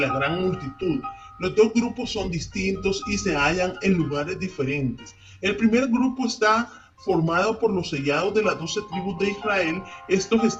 gran multitud. Los dos grupos son distintos y se hallan en lugares diferentes. El primer grupo está formado por los sellados de las 12 tribus de Israel. Estos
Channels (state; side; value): identical; both; correlation 1.00